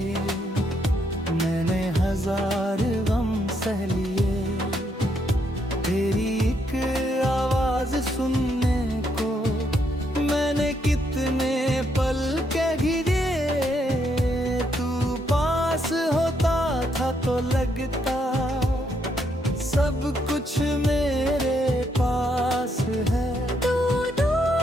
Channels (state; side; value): normal; both; correlation 0.75